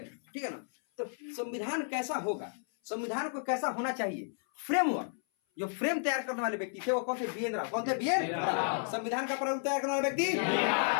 ठीक है ना। तो संविधान कैसा होगा, संविधान को कैसा होना चाहिए, फ्रेमवर्क। जो फ्रेम तैयार करने वाले व्यक्ति थे वो कौन थे, बी एन राव। कौन थे, बी एन राव। संविधान का प्रारूप तैयार करने वाले व्यक्ति,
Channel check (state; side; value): silent; right; 56 dB below the other